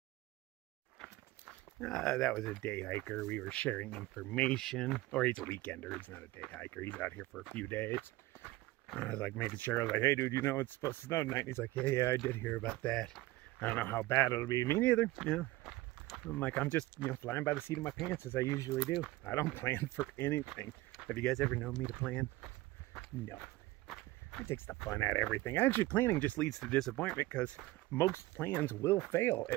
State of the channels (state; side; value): quieter; left; 18.8 dB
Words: That was a day hiker. We were sharing information. Or he's a weekender. He's not a day hiker. He's out here for a few days. I was like making sure. I was like, hey, dude, you know it's supposed to snow tonight? And he's like, yeah, I did hear about that. I don't know how bad it'll be. Me neither. You know, I'm like, I'm just, you know, flying by the seat of my pants as I usually do. I don't plan for anything. Have you guys ever known me to plan? No. It takes the fun out of everything. Actually, planning just leads to disappointment because most plans will fail,